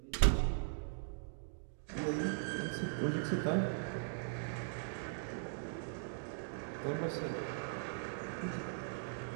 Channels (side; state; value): left; silent; digital silence